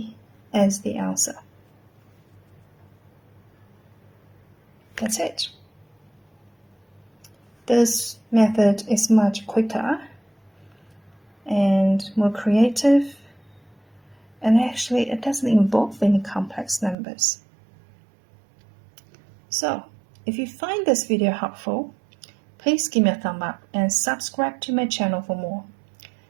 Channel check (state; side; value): drops out; left; at 16.9 s